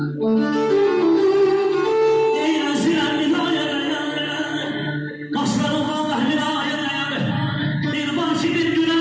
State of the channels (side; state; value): both; identical; correlation 1.00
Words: Deyirəm zirəm minayət, qaşlarım vallah minayət. Bir var ki bir günə